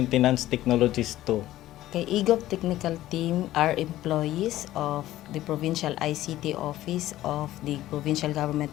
Technologist 2. Kay eGov Technical Team are employees of the Provincial ICT Office of the Provincial Government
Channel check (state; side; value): quieter; right; 14.7 dB